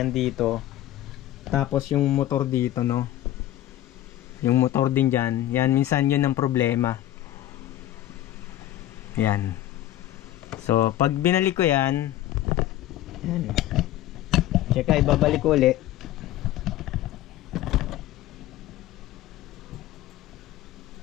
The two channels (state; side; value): quieter; right; 13.6 dB